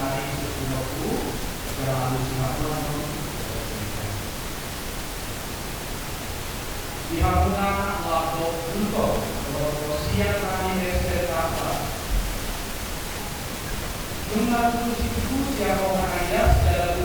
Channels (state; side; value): identical; both; correlation 1.00